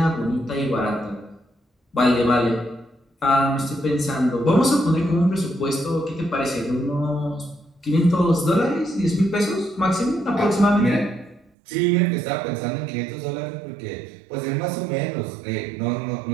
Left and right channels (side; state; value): left; drops out; at 11.5 s